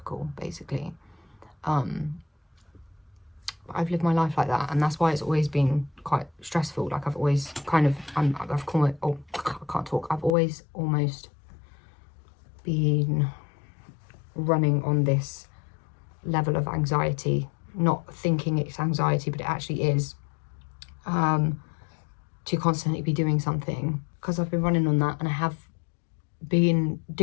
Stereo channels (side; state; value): right; drops out; at 10.3 s